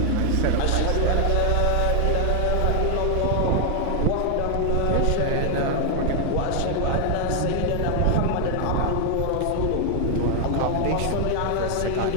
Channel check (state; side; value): different; both; correlation 0.00